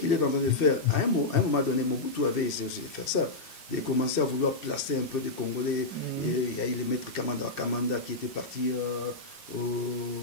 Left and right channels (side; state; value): right; quieter; 3.1 dB